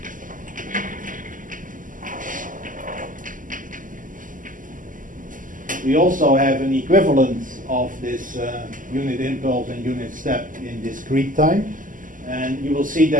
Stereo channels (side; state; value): left; late; 0.38 ms